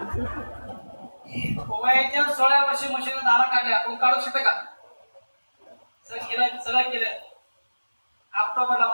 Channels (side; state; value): both; inverted; correlation -1.00